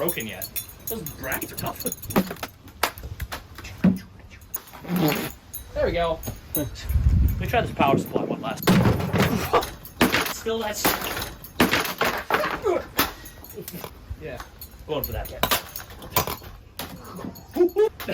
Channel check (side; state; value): both; identical; correlation 1.00